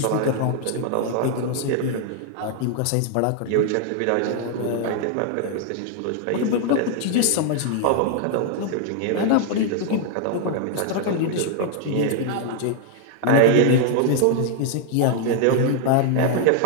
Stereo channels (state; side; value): different; both; correlation 0.00